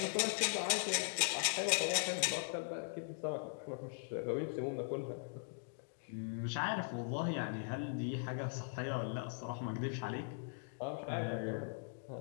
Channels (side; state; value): right; silent; digital silence